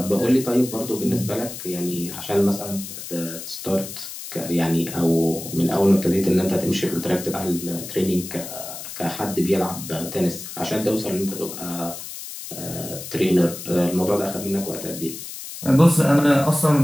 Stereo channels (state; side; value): noise; left; hiss, 10 dB below the sound